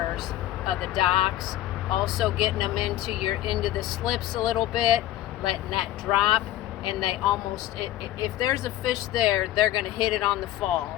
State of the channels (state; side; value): quieter; right; 14.1 dB